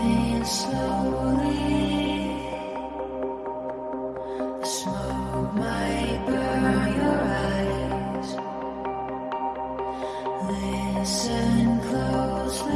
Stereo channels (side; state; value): both; identical; correlation 1.00